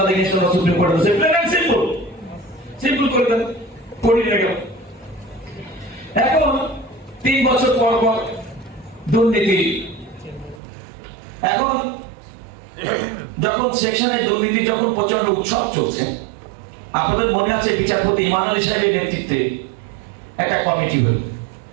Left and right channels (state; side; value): drops out; left; at 10.6 s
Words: দেখে সুপ্রিম কোর্টে বসে। সিম্পল সিম্পল করে দেন, করি না কেন? এখন 3 বছর পর পর দুর্নীতি, এখন যখন সেকশনে দুর্নীতি যখন প্রচন্ড উৎসব চলছে, আপনাদের মনে আছে বিচারপতি ইমান আলী সাহেবের নেতৃত্বে একটা কমিটি হল